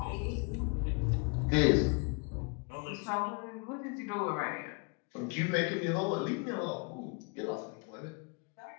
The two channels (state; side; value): quieter; right; 33.2 dB